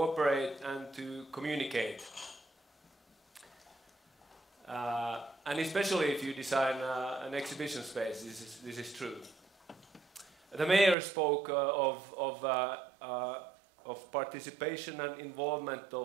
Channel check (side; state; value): left; drops out; at 11.0 s